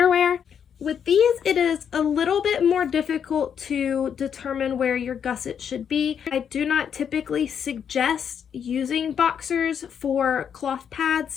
With these, it is a little bit more difficult to determine where your gusset should be. I do not typically suggest using boxers for cloth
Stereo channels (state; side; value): quieter; right; 7.9 dB